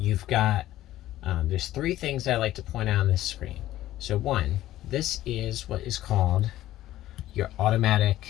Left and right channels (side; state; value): right; quieter; 14.4 dB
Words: got, there's 3 things I like to point out on this screen. So one, this is what is called your